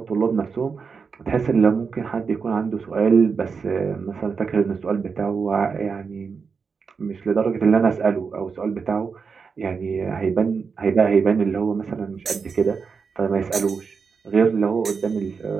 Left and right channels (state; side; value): quieter; left; 5.5 dB